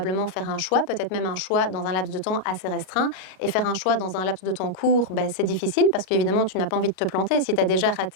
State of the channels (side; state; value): right; late; 37 ms